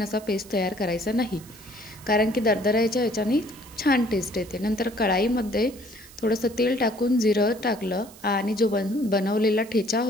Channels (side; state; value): right; noise; hiss, 21 dB below the sound